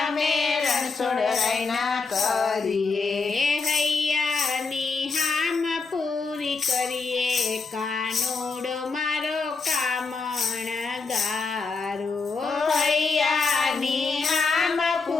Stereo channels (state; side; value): quieter; right; 4.3 dB